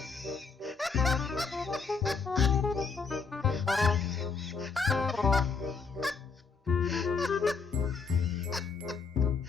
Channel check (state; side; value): quieter; right; 5.0 dB